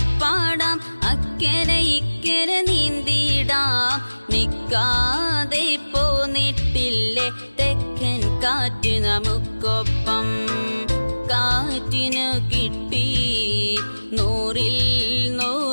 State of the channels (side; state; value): both; inverted; correlation -1.00